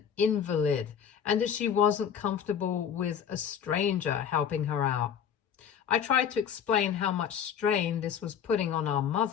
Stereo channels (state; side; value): quieter; right; 8.1 dB